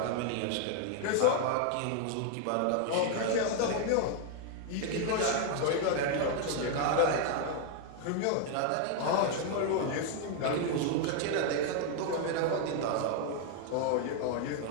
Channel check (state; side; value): different; both; correlation 0.00